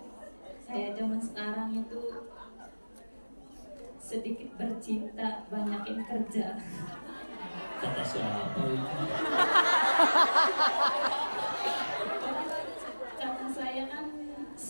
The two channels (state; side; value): inverted; both; correlation -1.00